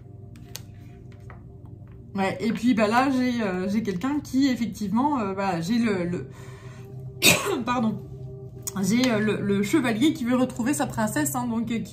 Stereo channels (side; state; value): both; identical; correlation 1.00